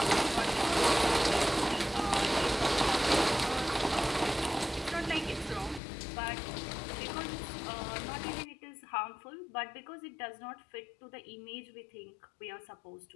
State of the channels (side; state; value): right; drops out; at 5.8 s